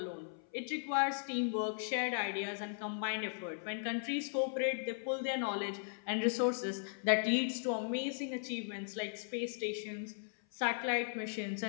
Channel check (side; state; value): right; silent; 53 dB below the other